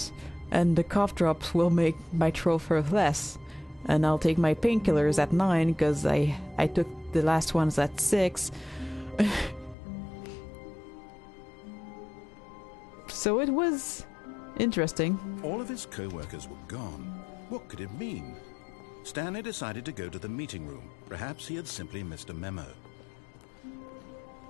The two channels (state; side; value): drops out; right; at 9.8 s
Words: and the cough drops will make my throat hurt less. And I'll take my painkillers at 9 because I took the last ones at 6. So it was interesting. All of his co-workers were gone. What could it mean? Stanley decided to go to the meeting room. Perhaps he had simply missed a memo.